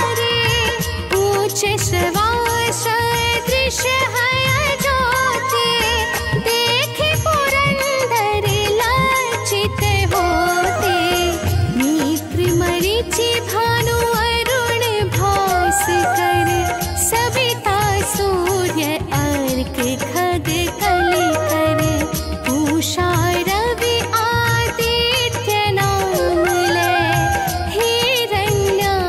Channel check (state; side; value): identical; both; correlation 1.00